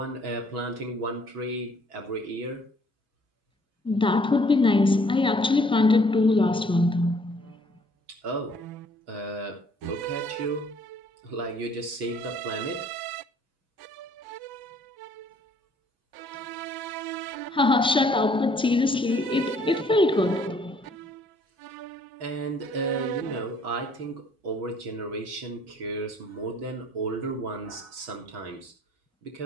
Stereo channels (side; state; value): both; normal; correlation 0.61